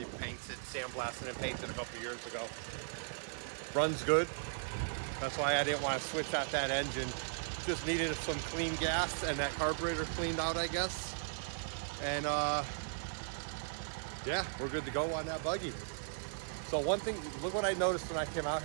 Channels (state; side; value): silent; left; digital silence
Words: painted, sandblasted and painted a couple years ago. Runs good. That's why I didn't want to switch out that engine. Just needed some clean gas and that carburetor cleaned out, I guess. And yeah, we're good to go on that buggy. So one thing, look what I noticed when I came out